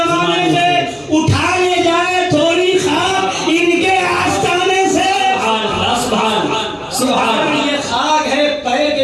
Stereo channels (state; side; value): identical; both; correlation 1.00